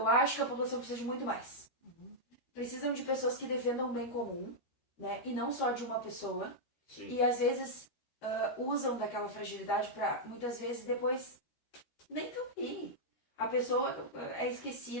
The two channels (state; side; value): late; right; 13 ms